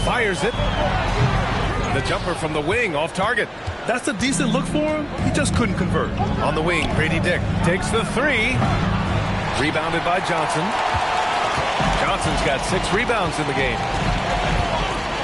Fires it. The jumper from the wing off target. That's a decent look for him. He just couldn't convert. On the wing, Grady Dick takes the 3. Rebounded by Johnson. Johnson's got 6 rebounds in the game.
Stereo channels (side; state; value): both; identical; correlation 1.00